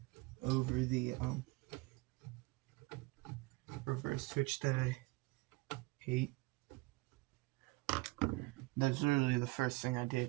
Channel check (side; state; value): left; quieter; 23.7 dB